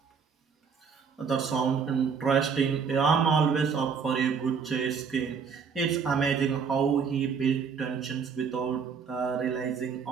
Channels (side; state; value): left; quieter; 6.1 dB